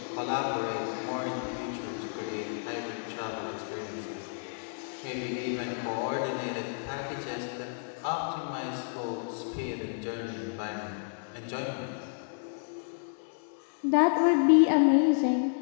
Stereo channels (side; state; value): right; silent; digital silence